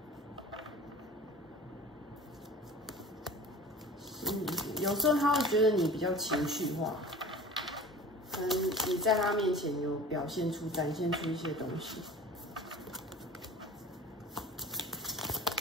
有时候他会觉得你比较情绪化，可能你在他面前有展现出一些东西，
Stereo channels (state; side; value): normal; both; correlation 0.41